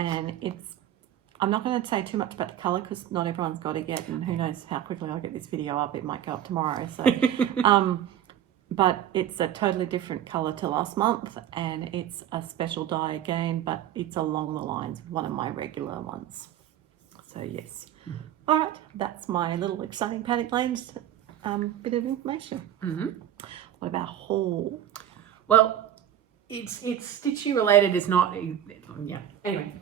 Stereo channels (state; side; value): quieter; left; 10.8 dB